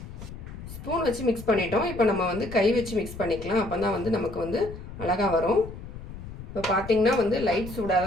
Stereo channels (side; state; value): left; noise; rumble, 12 dB below the sound